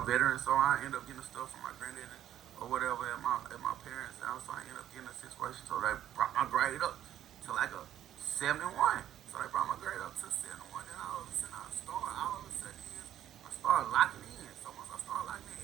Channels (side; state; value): left; quieter; 11.4 dB